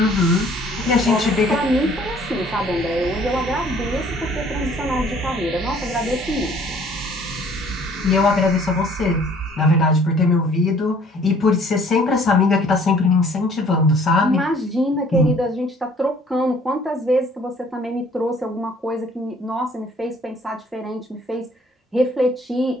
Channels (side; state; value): both; normal; correlation 0.56